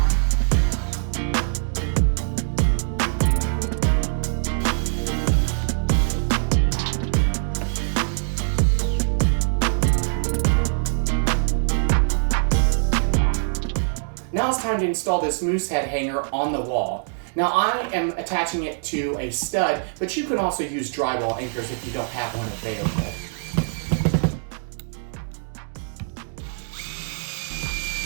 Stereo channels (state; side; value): silent; left; digital silence